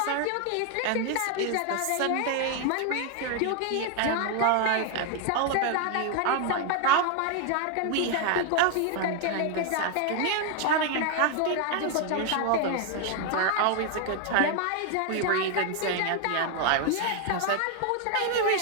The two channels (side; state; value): both; different; correlation 0.01